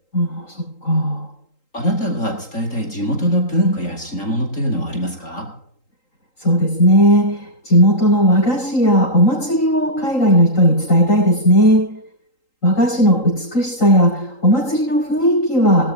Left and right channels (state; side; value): late; right; 3.8 ms